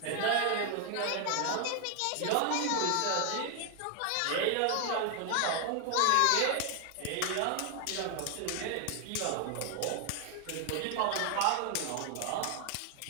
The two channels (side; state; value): both; different; correlation 0.00